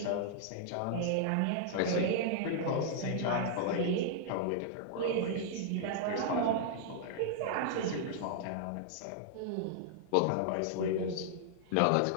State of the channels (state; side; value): different; both; correlation -0.01